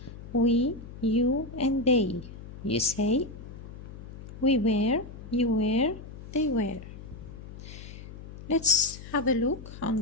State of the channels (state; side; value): noise; left; hum, 14 dB below the sound